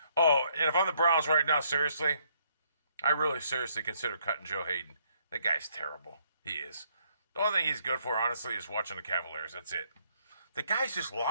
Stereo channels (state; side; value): inverted; both; correlation -0.69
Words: Oh, and if I'm the Browns right now, seriously, I really seriously consider cutting Joe Hayden. That guy's terrible. He is. The only thing he's good for, honestly, is watching the Cavaliers. That's it. The guy's just